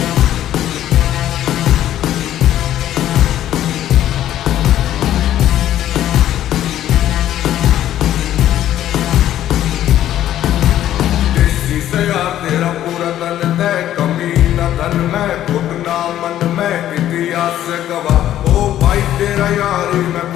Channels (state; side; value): quieter; right; 12.2 dB